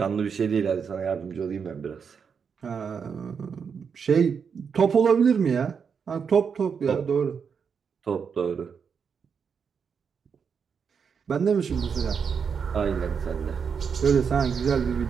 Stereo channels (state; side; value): quieter; left; 6.4 dB